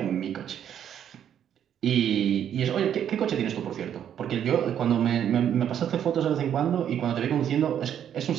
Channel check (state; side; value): quieter; left; 9.5 dB